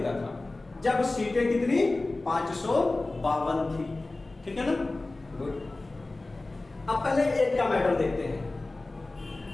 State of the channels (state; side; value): quieter; right; 3.1 dB